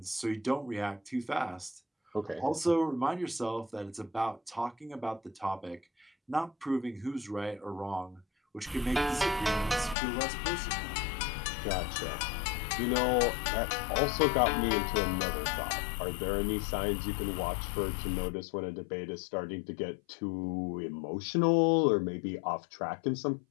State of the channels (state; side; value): drops out; right; at 10.0 s